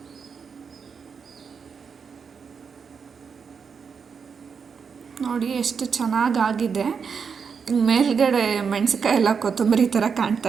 ನೋಡಿ ಎಷ್ಟು ಚೆನ್ನಾಗಾಗಿದೆ. ಮೇಲ್ಗಡೆ ಮೆಣಸಿನ್ಕಾಯಿ ಎಲ್ಲ ಕೊತ್ತಂಬರಿ ಥರ ಕಾಣ್ತಾ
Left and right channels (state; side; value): quieter; left; 6.1 dB